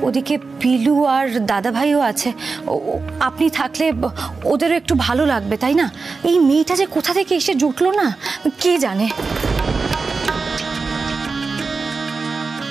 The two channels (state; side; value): quieter; left; 4.3 dB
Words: ওদিকে পিলু আর দাদা ভাইও আছে, আপনি থাকলে ওদেরও একটু ভালো লাগবে, তাই না? এই মেয়েটা যে কোথা থেকে এসে জুটলো না কে জানে।